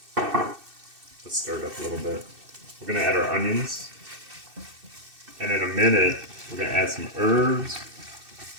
go. Let's stir it up a little bit. We're going to add our onions. And in a minute, we're going to add some herbs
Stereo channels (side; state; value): left; late; 2.6 ms